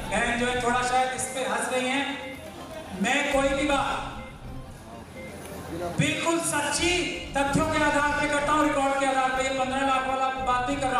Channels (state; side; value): identical; both; correlation 1.00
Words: जो है थोड़ा शायद इस पे हंस रही हैं, मैं कोई भी बात बिल्कुल सच्ची तथ्यों के आधार पे करता हूं, रिकॉर्ड के आधार पे। ये 15 लाख वाला बात नहीं कर